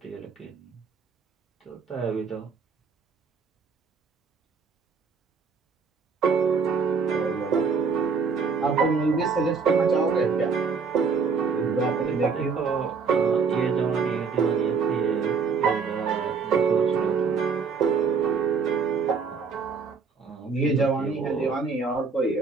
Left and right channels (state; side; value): quieter; left; 5.3 dB